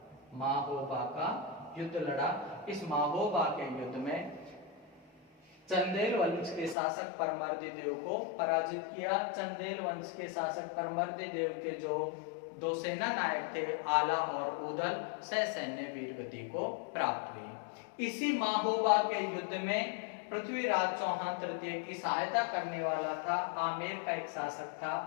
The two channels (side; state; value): right; drops out; at 6.8 s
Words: युद्ध लड़ा। इस महोबा के युद्ध में चंदेल वंश के शासक परमर्दी देव को पराजित किया। चंदेल वंश के शासक परमर्दी देव के जो 2 सेना नायक थे आला और ऊदल सैन्य वीर गति को प्राप्त हुई। इसी महोबा के युद्ध में पृथ्वीराज चौहान तृतीय की सहायता करने वाला था आमेर का एक शासक था